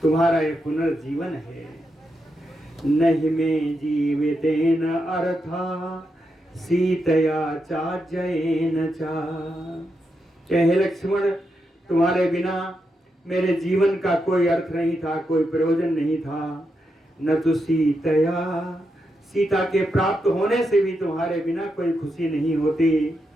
तुम्हारा ये पुनर्जीवन है। नहीं में जीवितेन अर्था सीतया चाजयेन चा। हे लक्ष्मण, तुम्हारे बिना मेरे जीवन का कोई अर्थ नहीं था, कोई प्रयोजन नहीं था। न तो सीतया, सीता के प्राप्त होने से भी तुम्हारे बिना कोई खुशी नहीं होती।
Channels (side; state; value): both; normal; correlation 0.84